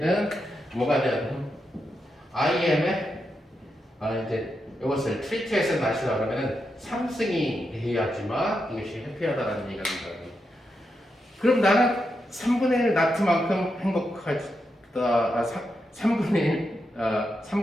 뭐가 되냐면 I am의 이제 이것을 트리트에서 나시라 그러면은 3승이 돼야지만 이것이 해피하다라는 얘기가 된다. 그럼 나는 3분의 1 나트만큼 행복하다. 3분의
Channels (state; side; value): normal; both; correlation 0.85